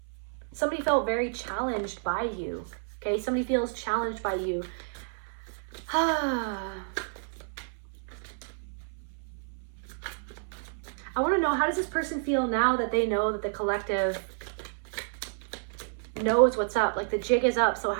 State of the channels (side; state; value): left; silent; 58 dB below the other